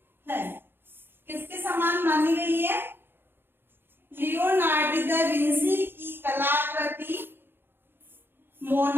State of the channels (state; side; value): late; left; 0.10 ms